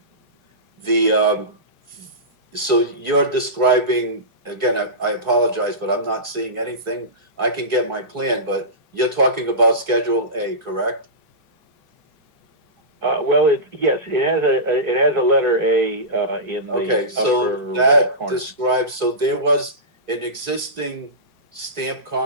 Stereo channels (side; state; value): both; normal; correlation -0.19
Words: So you're describing, again, I apologize, but I'm not seeing anything. I can get my plan, but you're talking about Schedule A, correct? Well, yes, it has a letter A in the Okay, upper so right that corner. describes, so there was an existing stamped